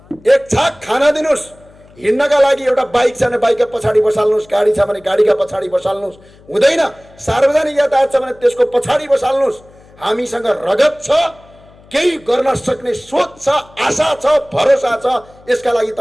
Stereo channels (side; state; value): left; noise; hum, 26 dB below the sound